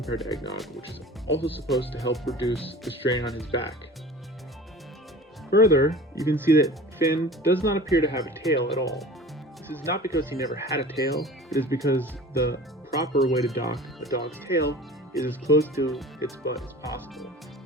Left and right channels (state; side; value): normal; both; correlation 0.40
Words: to Eggnog, which is also supposed to help reduce the strain on his back. Further, you can see that Finn does not appear to have a tail at all. This is not because he never had a tail, it is because the proper way to dock a dog's tail is as close to its butt as possible.